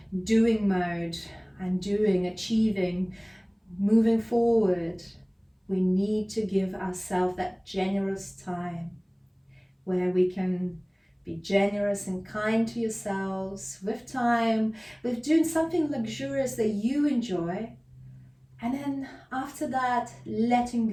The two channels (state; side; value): identical; both; correlation 1.00